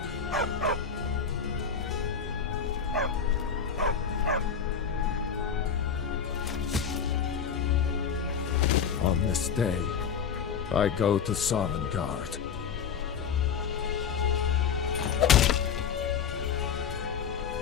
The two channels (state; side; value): quieter; right; 7.0 dB